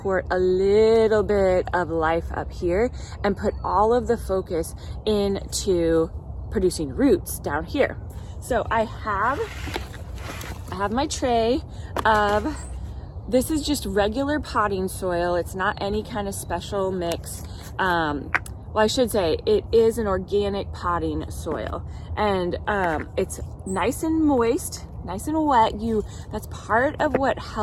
a little bit of life up here and put all of the focus into producing roots down here. So I have my tray of, this is just regular potting soil. It's not any kind of special mix. Well, I should say it is an organic potting soil, and it's nice and moist, nice and wet. That's part of what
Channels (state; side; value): identical; both; correlation 1.00